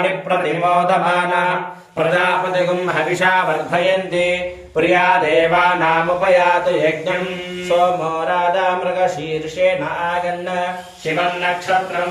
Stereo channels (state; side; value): identical; both; correlation 1.00